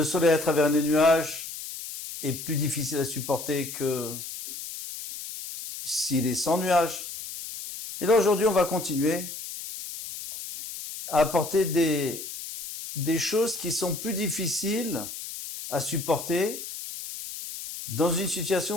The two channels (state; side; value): noise; left; hiss, 9 dB below the sound